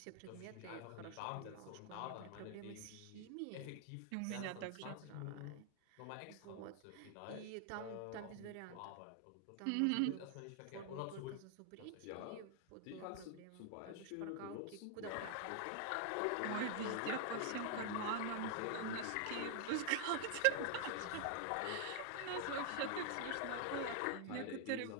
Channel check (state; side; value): different; both; correlation 0.00